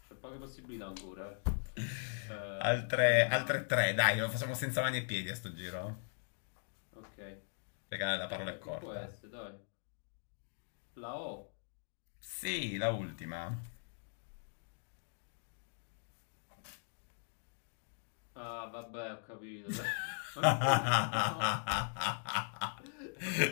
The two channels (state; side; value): silent; right; digital silence